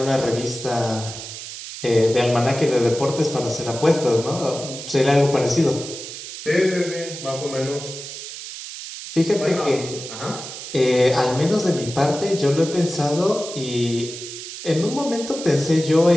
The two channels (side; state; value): right; noise; hiss, 10 dB below the sound